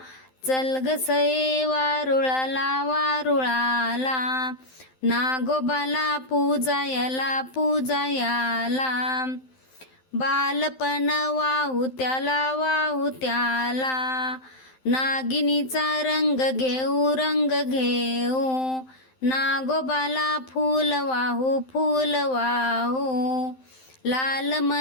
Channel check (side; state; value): right; late; 12 ms